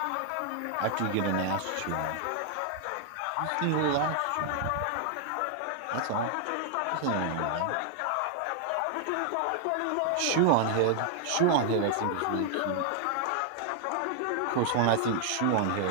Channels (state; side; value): different; both; correlation 0.00